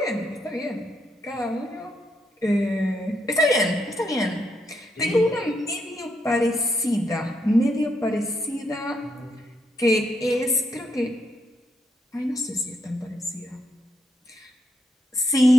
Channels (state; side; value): normal; both; correlation 0.78